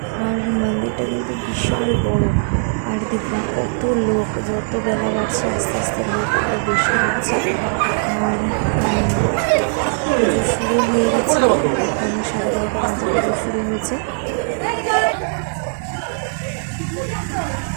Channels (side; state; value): left; silent; 66 dB below the other